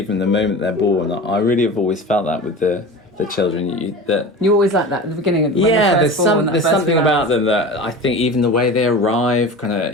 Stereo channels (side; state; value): both; normal; correlation 0.33